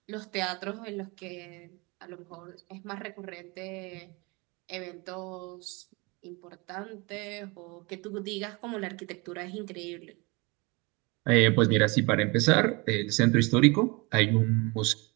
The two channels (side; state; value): left; quieter; 27.0 dB